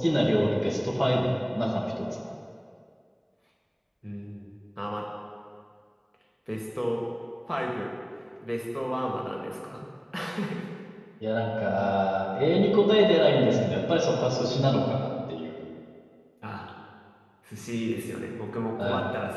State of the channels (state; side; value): identical; both; correlation 1.00